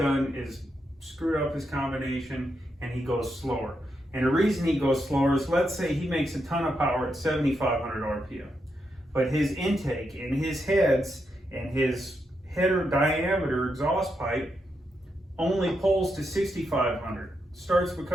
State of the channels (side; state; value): both; normal; correlation 0.83